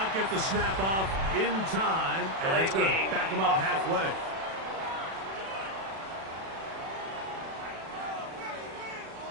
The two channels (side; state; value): left; late; 36 ms